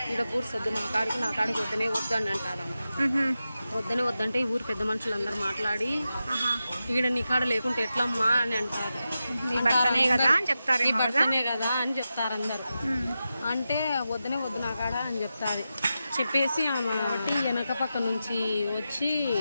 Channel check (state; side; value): inverted; both; correlation -0.91